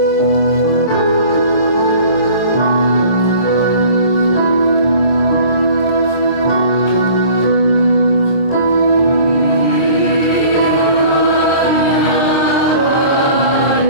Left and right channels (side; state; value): right; late; 23 ms